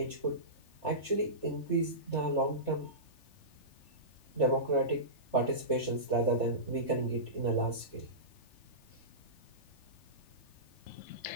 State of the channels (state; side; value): late; right; 3.4 ms